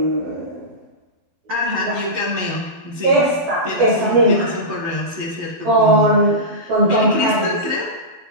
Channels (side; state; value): left; late; 12 ms